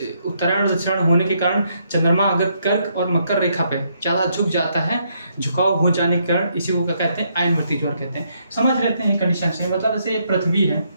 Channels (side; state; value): both; inverted; correlation -0.74